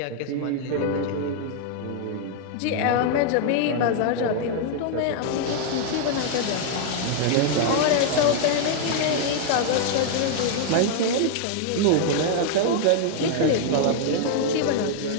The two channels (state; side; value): different; both; correlation 0.00